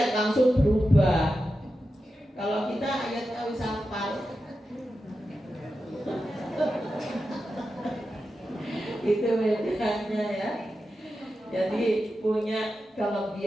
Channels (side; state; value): both; normal; correlation 0.90